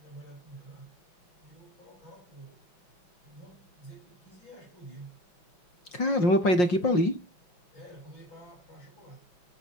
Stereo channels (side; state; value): right; late; 5.6 ms